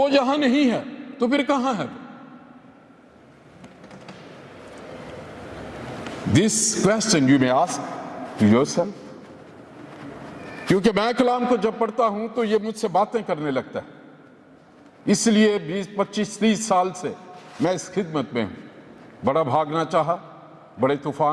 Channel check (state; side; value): identical; both; correlation 1.00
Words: यहां नहीं है तो फिर कहां है? This question you may ask to yourself. क्योंकि मैं कलाम को जब पढ़ता हूं तो ये मुझसे बातें करने लगता है। इसलिए 20, 25, 30 साल से मैं इस खिदमत में हूं। बड़ा भागना चाहा, बड़े